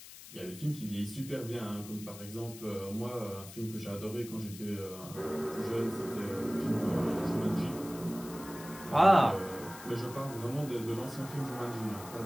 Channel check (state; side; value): noise; left; hiss, 15 dB below the sound